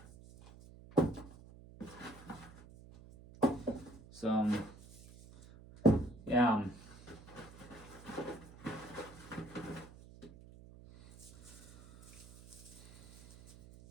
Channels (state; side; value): noise; right; hum, 19 dB below the sound